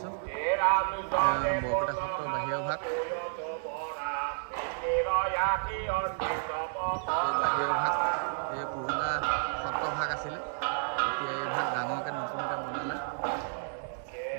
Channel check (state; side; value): silent; left; digital silence